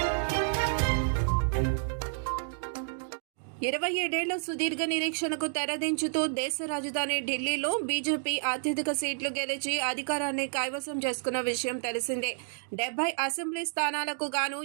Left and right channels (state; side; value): silent; left; digital silence